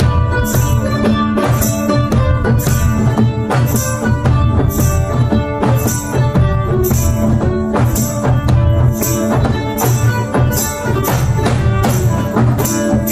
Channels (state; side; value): identical; both; correlation 1.00